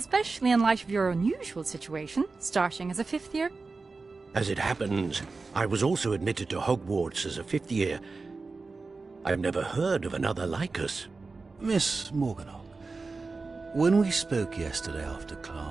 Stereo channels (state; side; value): quieter; left; 4.0 dB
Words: in light of your unusual situation, starting as a 5th year. As it happens, I was also admitted to Hogwarts as a 5th year. I've never heard of another like us. Miss Morganach, when we spoke yesterday after